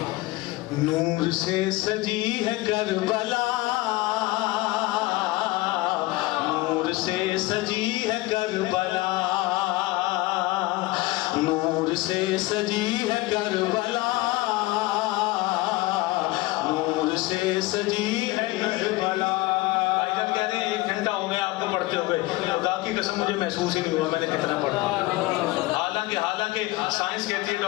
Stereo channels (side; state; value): right; quieter; 19.8 dB